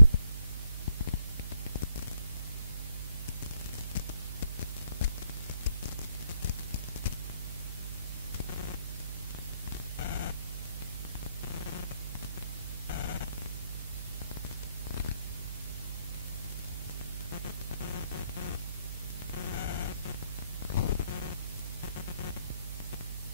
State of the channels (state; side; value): inverted; both; correlation -0.72